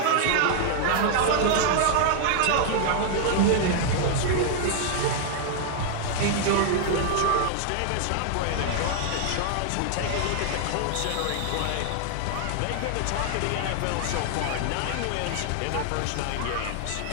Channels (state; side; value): different; both; correlation 0.00